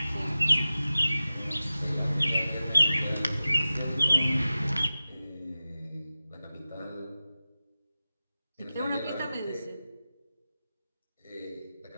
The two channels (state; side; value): inverted; both; correlation -0.95